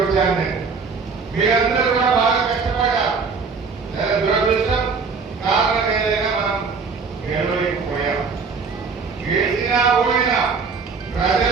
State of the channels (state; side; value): quieter; left; 5.0 dB